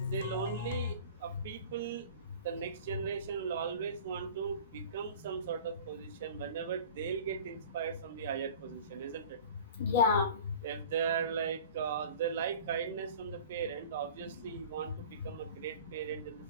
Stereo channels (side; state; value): both; inverted; correlation -0.41